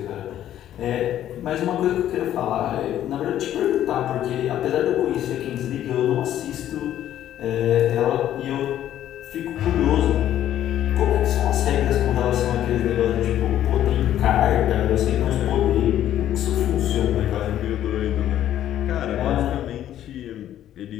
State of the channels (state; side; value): quieter; right; 11.7 dB